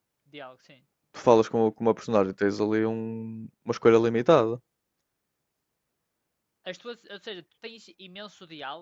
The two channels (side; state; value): both; identical; correlation 1.00